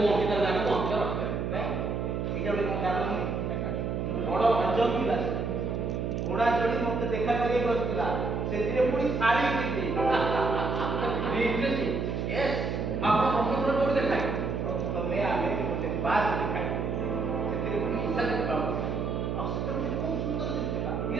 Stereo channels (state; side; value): noise; right; hum, 1 dB below the sound